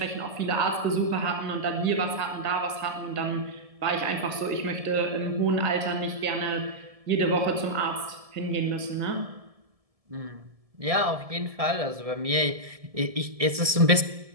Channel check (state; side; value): late; left; 1.7 ms